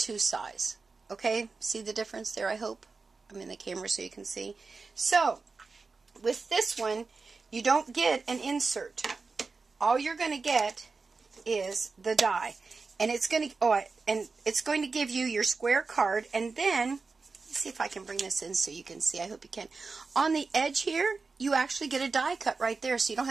size. Okay, see the difference there, I hope? I'm in the camera so you can see. So, with this one, you don't get an insert. All you're going to get is the die. And it's going to give you your square card, and then see if I can bring this in so you can see. I hope you can. On the edge here, you actually get a die cut right there, so you don't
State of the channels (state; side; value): quieter; left; 4.3 dB